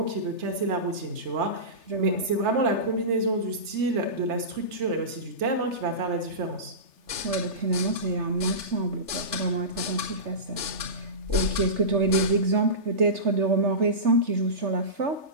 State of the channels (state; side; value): late; left; 3.3 ms